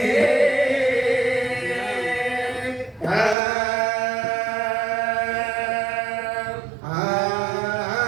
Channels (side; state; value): left; drops out; at 3.4 s